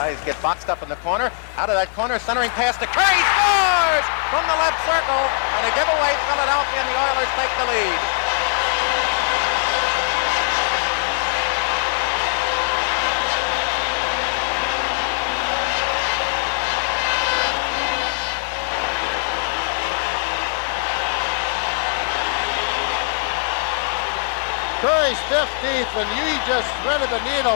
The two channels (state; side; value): silent; right; digital silence